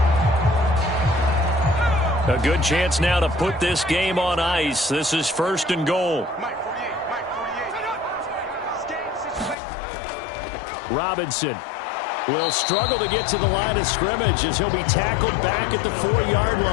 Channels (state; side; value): drops out; right; at 9.6 s